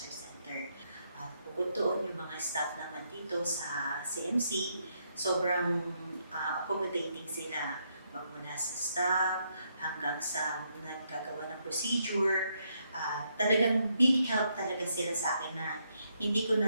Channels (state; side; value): inverted; both; correlation -0.77